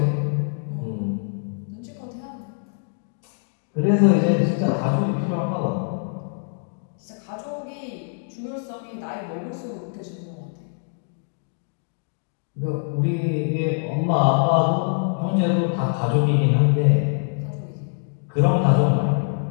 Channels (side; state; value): right; silent; digital silence